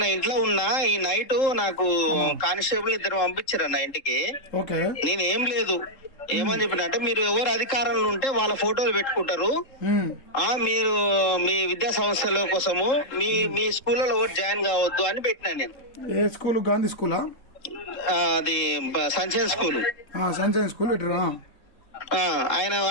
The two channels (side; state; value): right; late; 3.7 ms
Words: నా ఇంట్లో ఉన్నా ఈ నైట్ నాకు కానిస్టేబుల్ ఇద్దరు పంపించారు అన్న ఇంటికి. ఓకే. నేనేం లేదు ఏమని చెప్పిన అంటే మీరు ఎవరు అధికారంలో ఉంటే వాళ్ళ ఫోటోలు పెట్టుకుంటారు. మీరు మీ విద్యా సంస్థల కోసము మీ మీ స్కూల్లో ఎవరు జాయిన్ కావద్దు అని పెట్టినా నేను. ఏ స్కూల్? గాంధీ స్కూలా? అది సంచయన్ స్కూల్. సంచయన్ స్కూల్ పెట్టరా? ఆయన